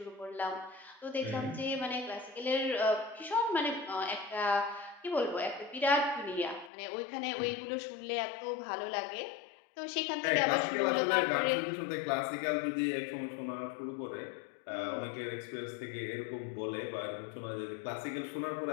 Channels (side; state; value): right; drops out; at 6.7 s